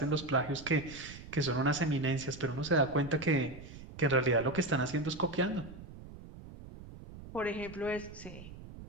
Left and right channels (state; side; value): noise; right; rumble, 15 dB below the sound